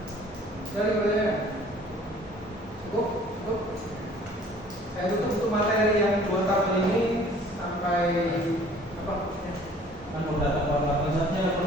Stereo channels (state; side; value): normal; both; correlation 0.53